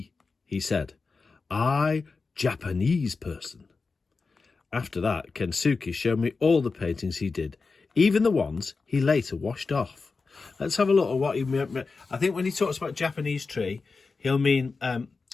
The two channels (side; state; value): right; quieter; 4.3 dB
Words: he said. "I, Japanese person." After that, Kensuke showed me all the paintings he did, even the ones he later washed off. Let's have a look at what he meant. I think when he talks about Japanese tree, he'll mean